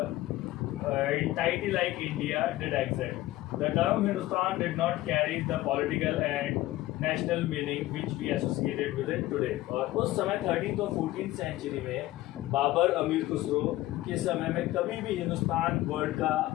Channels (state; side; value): quieter; right; 16.6 dB